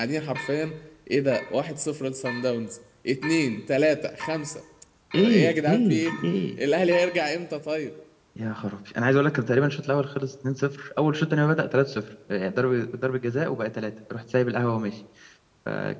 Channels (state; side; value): identical; both; correlation 1.00